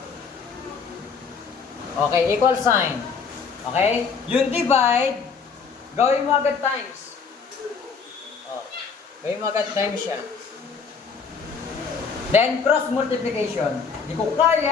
Okay, equal sign. Okay? Yung divide, gawin mo agad times. Gawin mo agad times siya. Then, cross multiplication. Di ko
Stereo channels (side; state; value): right; quieter; 5.6 dB